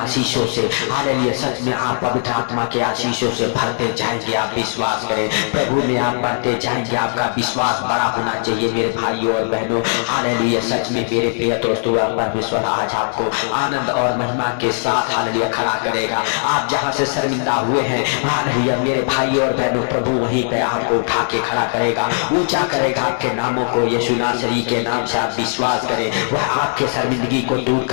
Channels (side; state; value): right; silent; 59 dB below the other